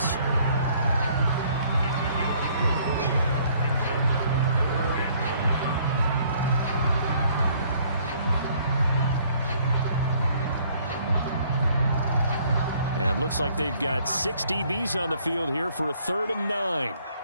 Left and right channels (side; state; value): both; inverted; correlation -0.62